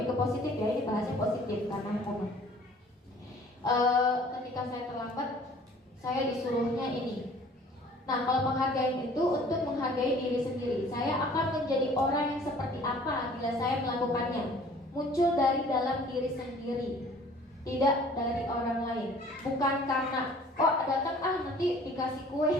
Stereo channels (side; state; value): both; normal; correlation 0.52